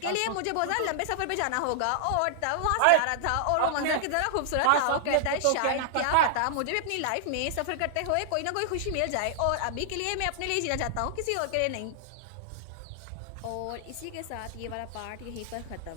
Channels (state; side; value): different; both; correlation -0.01